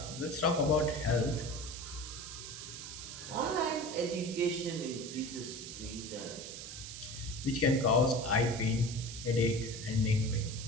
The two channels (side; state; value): right; noise; hiss, 10 dB below the sound